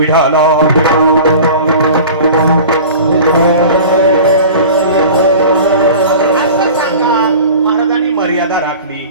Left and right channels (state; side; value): inverted; both; correlation -0.39